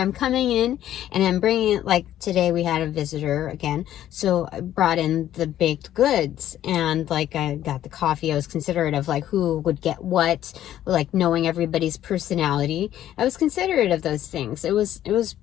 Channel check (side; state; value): right; quieter; 12.1 dB